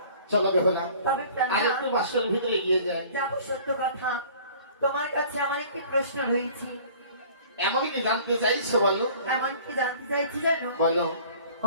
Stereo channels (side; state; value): both; inverted; correlation -0.49